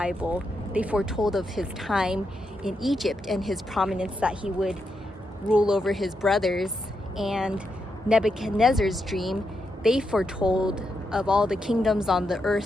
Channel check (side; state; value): both; normal; correlation 0.83